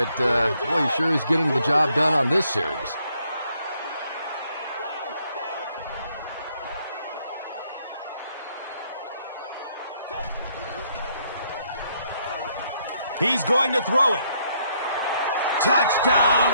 boy, he sure is getting the job done on this series. He's going to throw it. Touchdown,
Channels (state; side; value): inverted; both; correlation -0.70